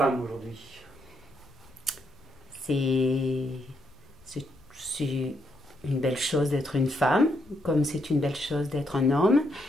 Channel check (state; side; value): noise; left; rumble, 26 dB below the sound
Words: aujourd'hui? C'est c'est une belle chose d'être une femme, comme c'est une belle chose d'être un homme.